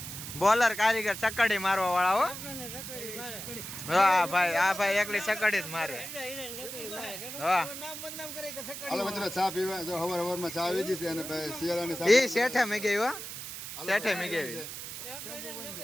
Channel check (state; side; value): noise; right; hiss, 9 dB below the sound